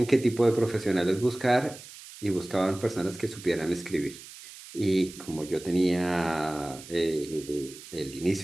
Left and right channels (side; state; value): right; noise; hiss, 16 dB below the sound